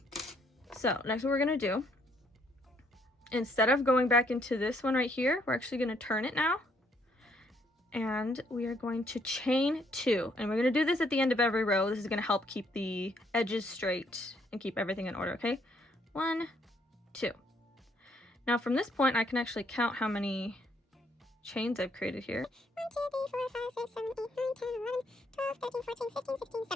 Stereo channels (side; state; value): both; normal; correlation 0.69